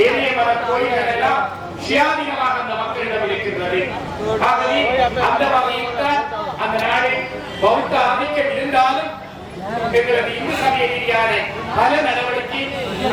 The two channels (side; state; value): both; identical; correlation 1.00